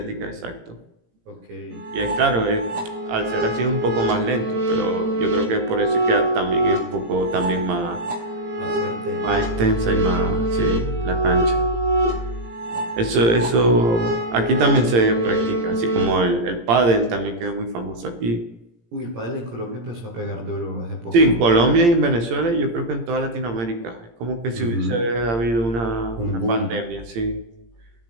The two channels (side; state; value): left; late; 17 ms